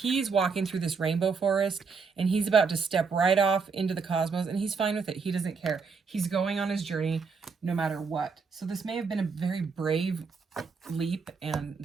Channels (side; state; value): left; quieter; 5.1 dB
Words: walking through this rainbow forest, and he's about to step right off into the cosmos, and he's fine with it. He doesn't care. He's going on his journey no matter what. So this may have been a very brave leap, and